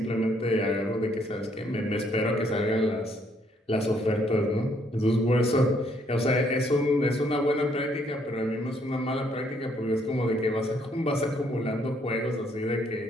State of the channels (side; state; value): both; normal; correlation 0.69